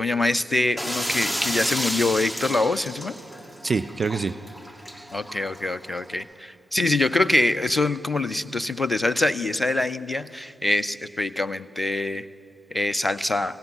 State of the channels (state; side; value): normal; both; correlation 0.89